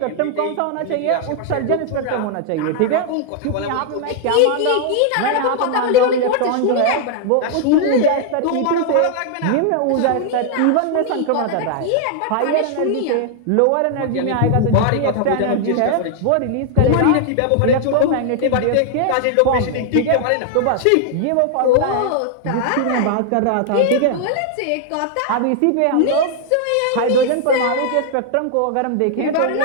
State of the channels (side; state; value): both; different; correlation 0.00